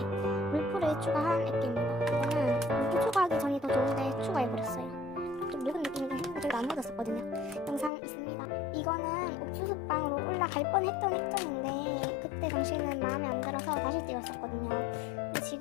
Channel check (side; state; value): right; drops out; at 7.9 s